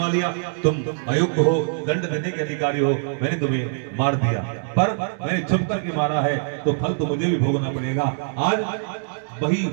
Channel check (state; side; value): silent; left; digital silence